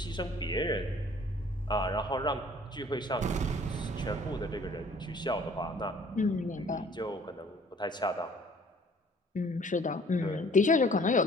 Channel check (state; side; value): normal; both; correlation 0.55